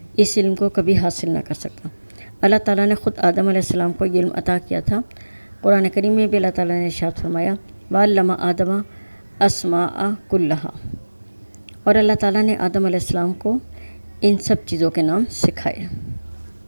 اس علم کو کبھی حاصل نہ کر سکتا۔ اللہ تعالیٰ نے خود آدم علیہ السلام کو یہ علم عطا کیا تھا۔ قرآن کریم میں بھی اللہ تعالیٰ نے ارشاد فرمایا وَعَلَّمَ آدَمَ الْأَسْمَاءَ كُلَّهَا، اور اللہ تعالیٰ نے آدم علیہ السلام کو ان سب چیزوں کے نام سکھائے۔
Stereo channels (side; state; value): both; inverted; correlation -1.00